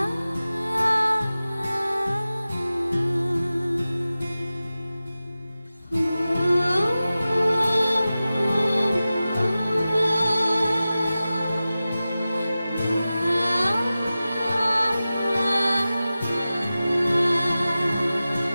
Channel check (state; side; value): inverted; both; correlation -0.95